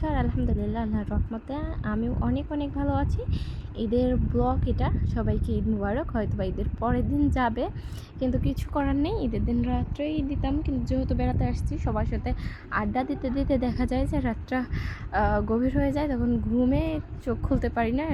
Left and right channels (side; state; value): both; identical; correlation 1.00